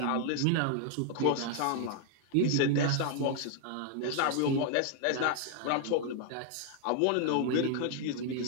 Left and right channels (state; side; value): different; both; correlation 0.00